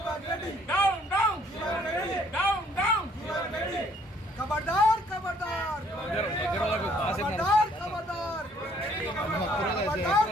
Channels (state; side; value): normal; both; correlation 0.63